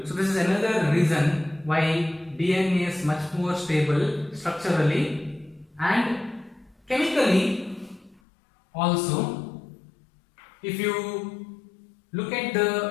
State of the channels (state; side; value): drops out; right; at 8.2 s